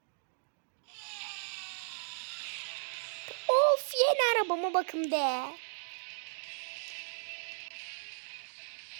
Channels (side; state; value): left; silent; digital silence